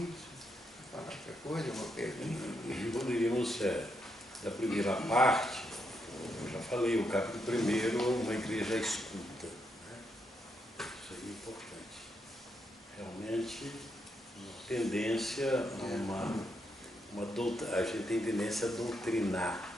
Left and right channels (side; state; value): both; normal; correlation 0.80